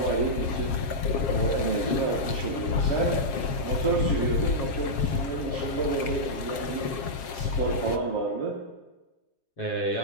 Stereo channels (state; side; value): late; right; 7.4 ms